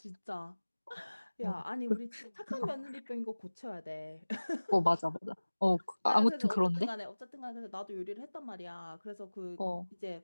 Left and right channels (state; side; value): inverted; both; correlation -1.00